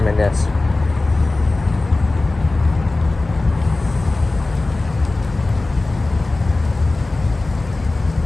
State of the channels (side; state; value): right; quieter; 3.1 dB